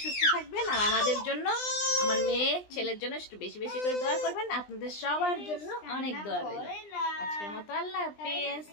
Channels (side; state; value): right; late; 20 ms